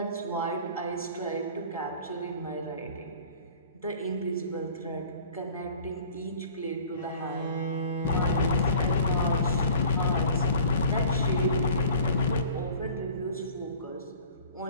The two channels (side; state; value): both; inverted; correlation -0.47